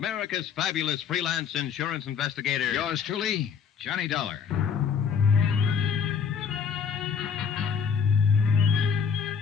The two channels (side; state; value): right; quieter; 6.8 dB